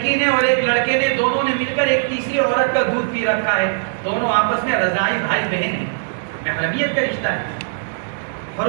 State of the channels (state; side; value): silent; left; 64 dB below the other